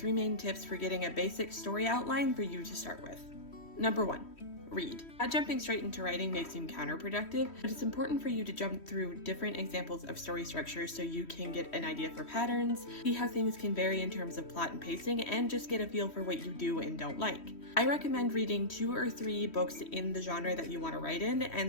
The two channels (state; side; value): late; right; 3.1 ms